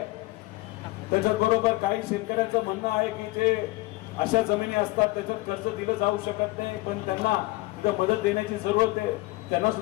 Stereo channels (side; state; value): right; quieter; 20.8 dB